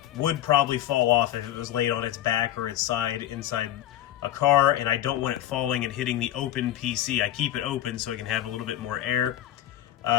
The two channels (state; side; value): quieter; right; 12.9 dB